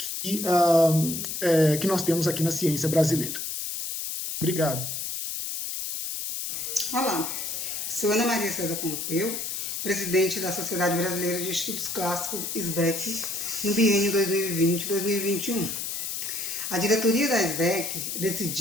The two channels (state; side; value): noise; left; hiss, 4 dB below the sound